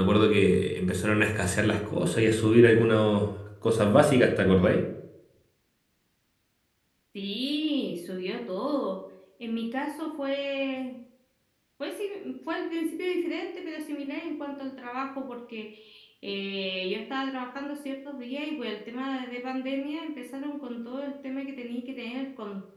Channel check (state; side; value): identical; both; correlation 1.00